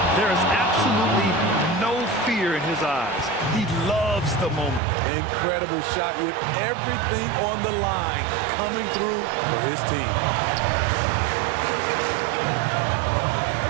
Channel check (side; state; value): left; drops out; at 4.8 s